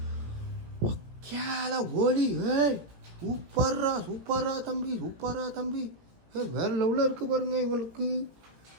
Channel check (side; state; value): left; late; 18 ms